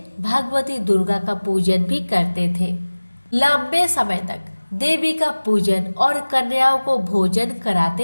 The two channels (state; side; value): inverted; both; correlation -1.00